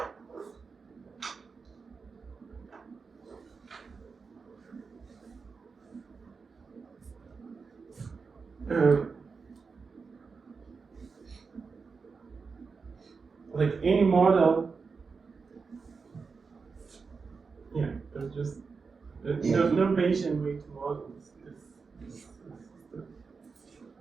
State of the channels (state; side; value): quieter; left; 5.0 dB